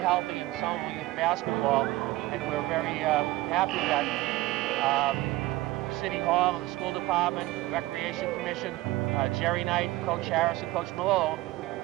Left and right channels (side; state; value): left; quieter; 18.1 dB